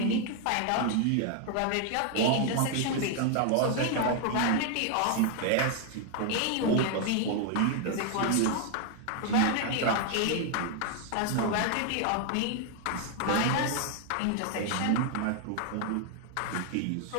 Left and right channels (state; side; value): different; both; correlation 0.00